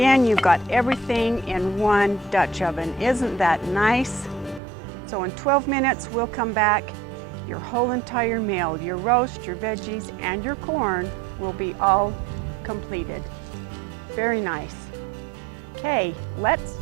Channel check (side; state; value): left; drops out; at 4.6 s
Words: you've got everything in one Dutch oven. Isn't that nice? So in 12 minutes, we'll come back. Your whole entire meal, your roast, your veggies, and your corn will be all completed. Very nice. Okay, let's